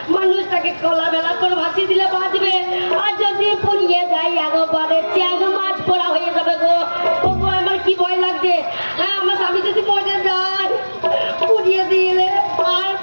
মানুষটাকে কলা বেলা করে ভাসিয়ে দিলে বাঁচবে, আর যদি পুড়িয়ে যায় একবারে চ্যাং মাছ পোড়া হয়ে যাবে গো। ওগো আমার কি ভয় লাগছে, হ্যাঁ আমার স্বামী যদি মরে যায় পুড়িয়ে দিলে আর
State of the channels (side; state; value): both; inverted; correlation -1.00